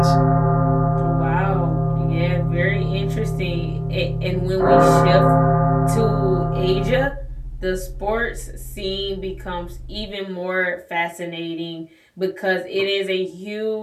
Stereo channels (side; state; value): both; identical; correlation 1.00